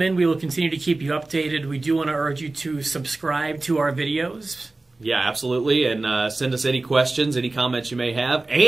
in, we will continue to keep you updated. We do want to urge you to subscribe to our videos. Yeah, absolutely. And send us any questions, any comments you may have.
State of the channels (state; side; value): quieter; left; 3.2 dB